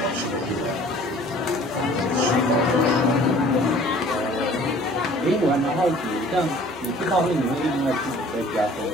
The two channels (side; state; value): both; normal; correlation 0.51